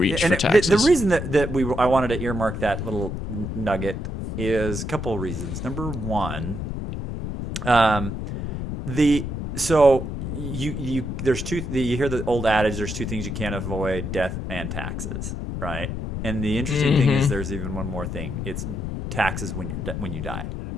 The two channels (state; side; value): noise; left; rumble, 5 dB below the sound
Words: for taxes. The reason that I wanted to earmark that little nugget is a couple of reasons. Number one, you hear the old adage, there's two things you can't avoid: death and taxes, right? And the interesting thing is there's even one more thing. It's taxes when you die,